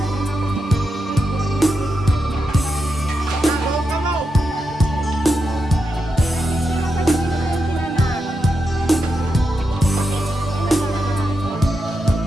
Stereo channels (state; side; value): normal; both; correlation 0.86